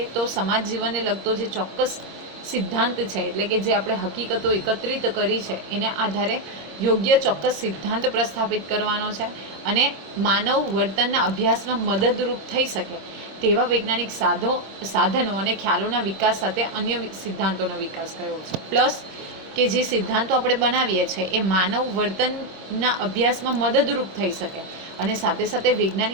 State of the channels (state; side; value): late; left; 26 ms